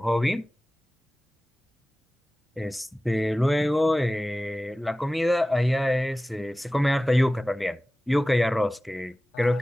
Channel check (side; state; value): both; normal; correlation 0.97